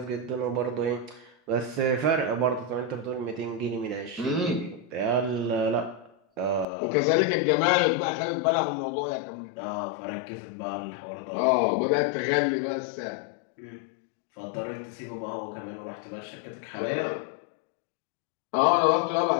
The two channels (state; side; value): drops out; right; at 6.7 s